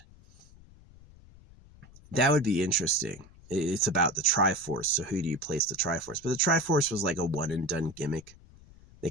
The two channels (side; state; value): left; noise; rumble, 23 dB below the sound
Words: That would be interesting. It's about the Triforce, so who do you place the Triforce? But the Triforce was like a one and done gimmick. They